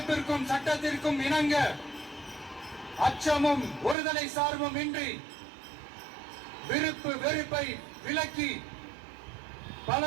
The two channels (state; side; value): drops out; left; at 4.0 s